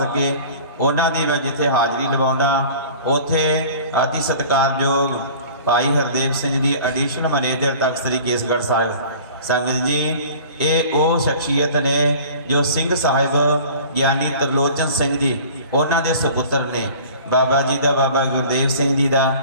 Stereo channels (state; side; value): inverted; both; correlation -0.44